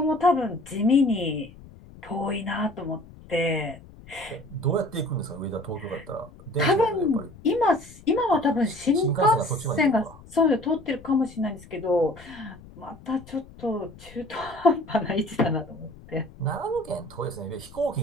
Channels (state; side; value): noise; left; rumble, 20 dB below the sound